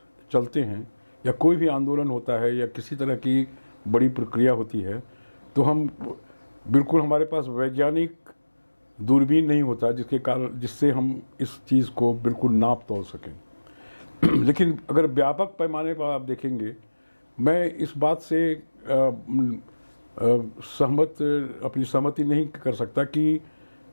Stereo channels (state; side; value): inverted; both; correlation -1.00